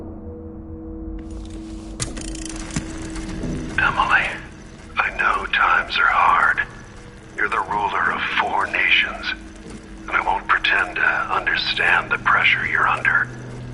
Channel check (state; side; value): identical; both; correlation 1.00